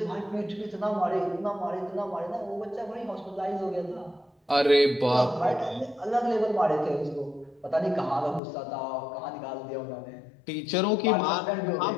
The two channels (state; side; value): drops out; right; at 8.4 s